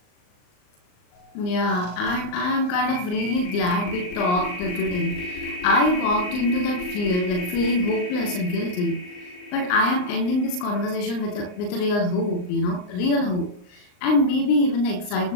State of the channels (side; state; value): right; late; 39 ms